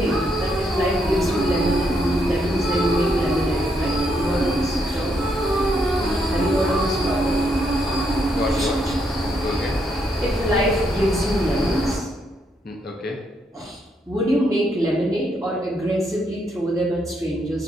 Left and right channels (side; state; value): both; normal; correlation 0.76